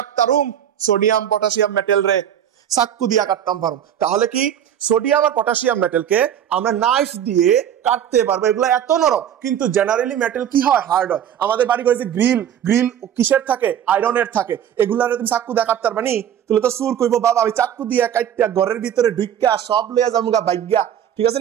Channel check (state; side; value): quieter; left; 9.8 dB